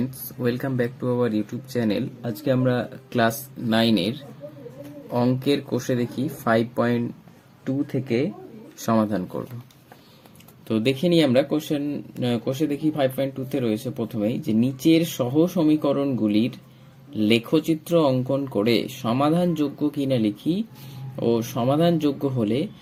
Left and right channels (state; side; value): identical; both; correlation 1.00